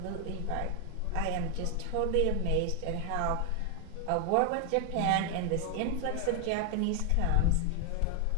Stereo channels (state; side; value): different; both; correlation 0.00